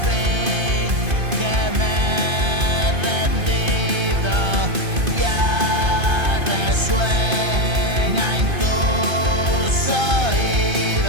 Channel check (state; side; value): late; left; 2.5 ms